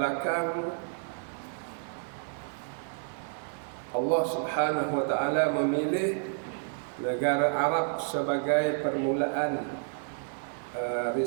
Allah Subhanahu wa taala memilih negara Arab sebagai permulaan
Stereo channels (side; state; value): left; silent; digital silence